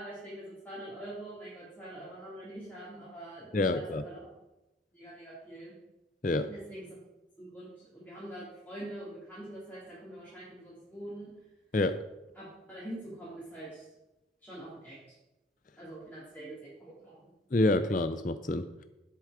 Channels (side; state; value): both; normal; correlation 0.55